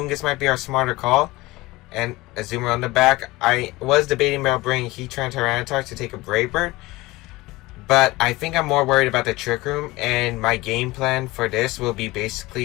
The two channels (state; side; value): quieter; right; 20.4 dB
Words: might be our smarter call. And Azumarill on the back. I was debating about bringing Heatran Tyranitar to take a Brave Bird, but I think I'm more worried about the Trick Room, and my game plan for this will be